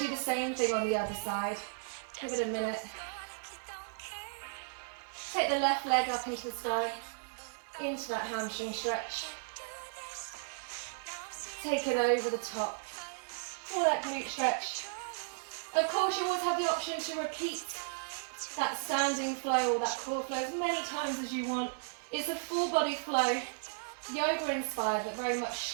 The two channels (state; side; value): silent; left; digital silence